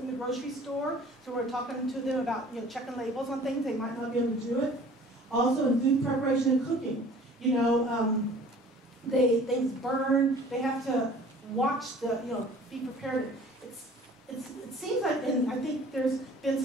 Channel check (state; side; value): normal; both; correlation 0.49